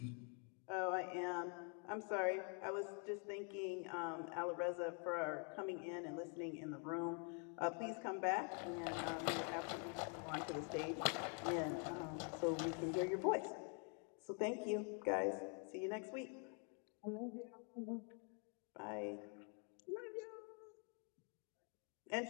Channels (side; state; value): right; quieter; 39.5 dB